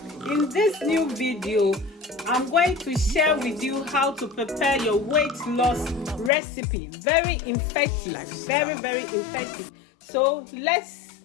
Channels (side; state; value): right; drops out; at 6.3 s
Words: In this new video, I'm going to share with you how to prepare your weight loss recipe. Very effective, very effective. So let's